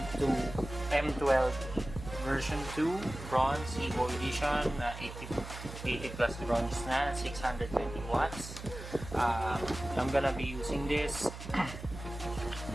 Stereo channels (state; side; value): noise; right; hum, 11 dB below the sound